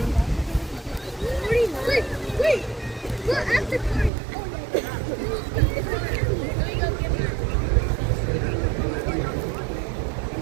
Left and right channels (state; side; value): drops out; left; at 4.1 s